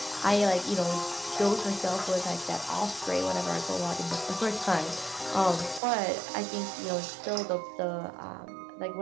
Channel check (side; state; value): left; drops out; at 5.8 s